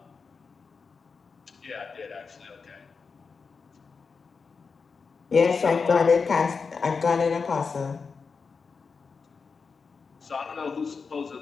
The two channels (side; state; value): right; quieter; 5.1 dB